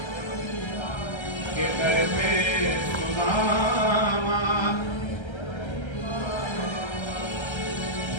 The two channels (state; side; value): late; right; 1.3 ms